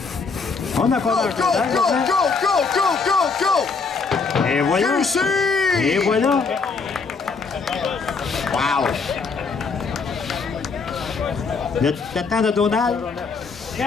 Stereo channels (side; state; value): right; quieter; 4.7 dB